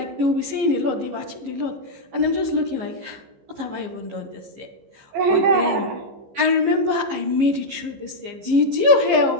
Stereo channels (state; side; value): late; left; 15 ms